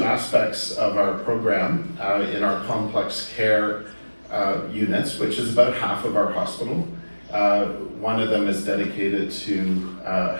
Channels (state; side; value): inverted; both; correlation -1.00